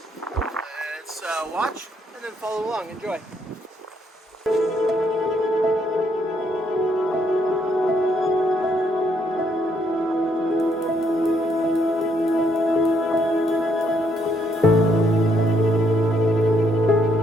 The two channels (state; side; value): normal; both; correlation 0.72